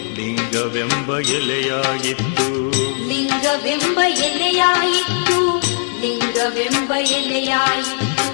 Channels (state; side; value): silent; right; digital silence